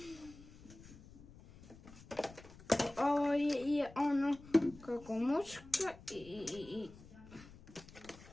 Ovo je ono kako muška i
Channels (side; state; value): left; noise; rumble, 19 dB below the sound